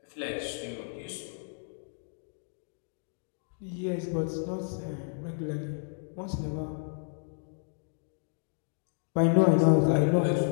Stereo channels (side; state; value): right; silent; digital silence